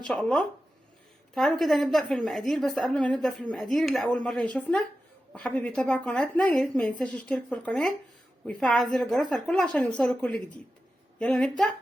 شاء الله. تعالوا كده نبدا في المقادير، بس قبل ما نبدا في المقادير اللي اول مره يشوفنا وحابب يتابع قناتنا يا ريت ما ينساش يشترك في القناه ويفعل زر الجرس على الكل عشان يوصله كل جديد. يلا نبدا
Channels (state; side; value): normal; both; correlation 0.92